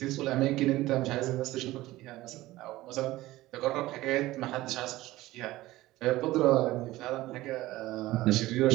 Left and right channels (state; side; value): quieter; left; 17.3 dB